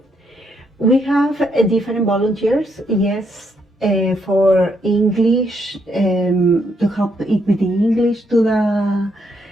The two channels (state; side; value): normal; both; correlation 0.75